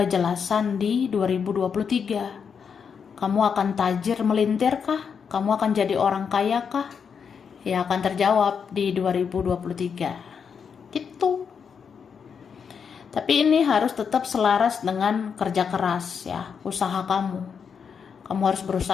di 2023. Kamu akan tajir melintir kah? Kamu akan jadi orang kaya kah? Ya akan terjawab di 2023. Gitu. Tapi ini harus tetap selaras dengan kerja keras ya, usaha kamu. Kamu harus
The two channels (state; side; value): quieter; right; 6.6 dB